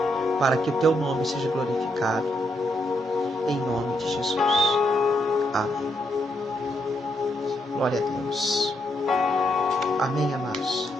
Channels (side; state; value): both; normal; correlation 0.78